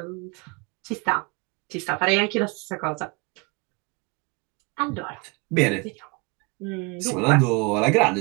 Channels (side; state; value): left; quieter; 29.2 dB